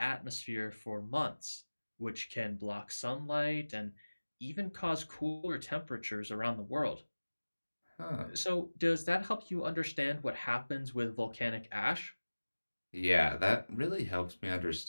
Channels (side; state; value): both; inverted; correlation -1.00